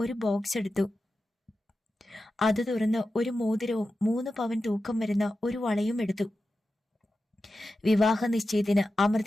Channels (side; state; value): both; normal; correlation 0.92